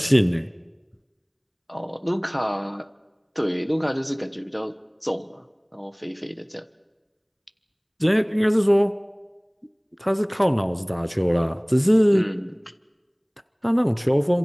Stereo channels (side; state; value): both; identical; correlation 1.00